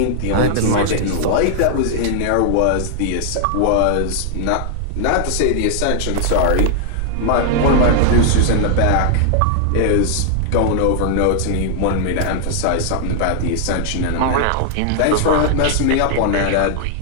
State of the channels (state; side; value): different; both; correlation -0.01